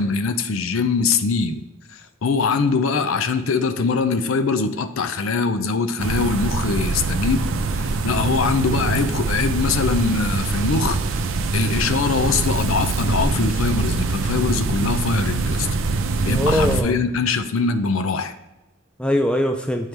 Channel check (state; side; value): normal; both; correlation 0.43